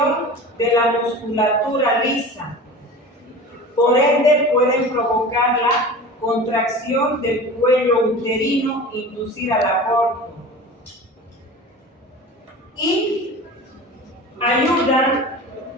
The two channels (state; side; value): normal; both; correlation 0.36